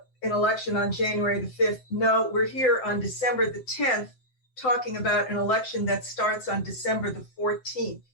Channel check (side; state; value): right; late; 7.7 ms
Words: an election on January the 5th. No, we're here on December the 10th talking about an election that starts on December the 14th.